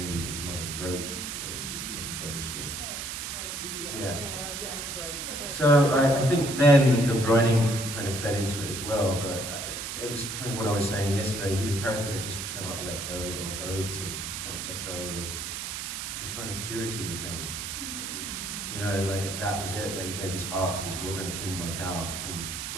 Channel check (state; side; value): noise; right; hiss, 5 dB below the sound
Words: his mother's brooch. Yeah. So I think then the writing kind of fed into it as well, but it was kind of what I was saying yesterday. He's a character that just cannot let go of oaths, and can't let go of the kind of purity of things. You know, like that was it, that he gave his heart to this woman, it didn't work out, and